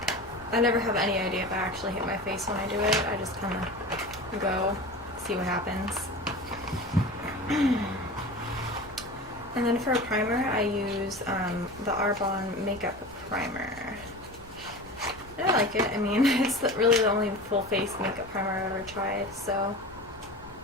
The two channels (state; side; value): noise; left; rumble, 22 dB below the sound